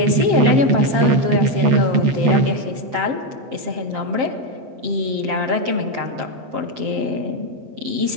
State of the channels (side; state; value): left; late; 7.5 ms